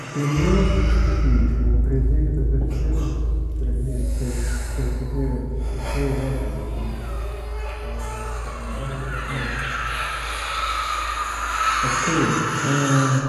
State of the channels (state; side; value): identical; both; correlation 1.00